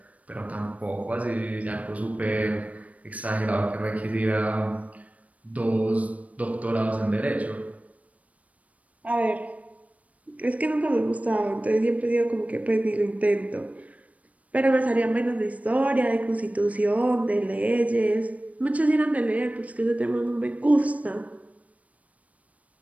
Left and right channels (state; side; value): late; left; 0.068 ms